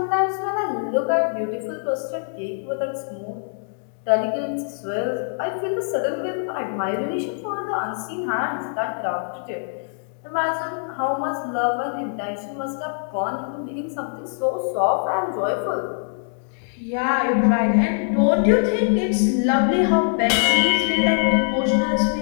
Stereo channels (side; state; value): right; silent; digital silence